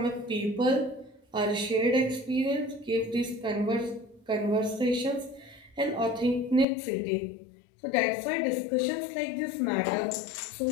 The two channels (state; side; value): drops out; right; at 6.7 s